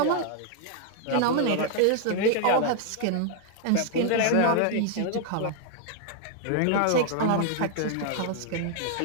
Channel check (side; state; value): both; different; correlation 0.00